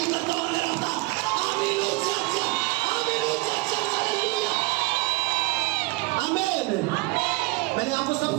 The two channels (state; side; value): quieter; left; 24.2 dB